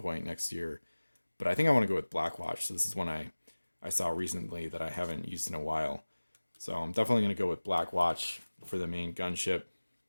next year. but I think I want to go with Blackwatch. So this is one I saw recently that I haven't used in a while. So I'm definitely going to go with Blackwatch for the main gunship.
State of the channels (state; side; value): inverted; both; correlation -1.00